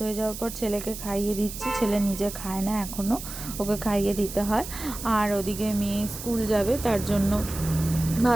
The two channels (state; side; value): noise; right; hiss, 10 dB below the sound